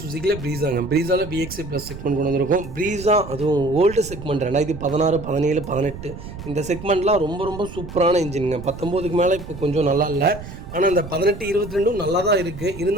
சுசுக்கியில் ப்ரீஸாங்க. ப்ரீஸாவில் VXI ப்ளஸ் செக்மெண்ட் கொண்டு வந்திருக்கும். ப்ரீஸா அதுவும் ஓல்டு செக்மெண்ட் 2016, 17, 18 இந்த செக்மெண்ட்லாம் ரொம்ப ரொம்ப சூப்பரான இன்ஜினுங்க. 19க்கு மேலே இப்போ கொஞ்சம் நல்லா இல்லை. ஆனால் இந்த 18, 22 நல்லா தான் இருக்குது.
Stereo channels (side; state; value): right; noise; rumble, 12 dB below the sound